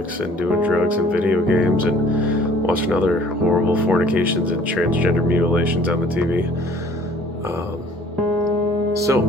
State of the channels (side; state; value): both; normal; correlation 0.54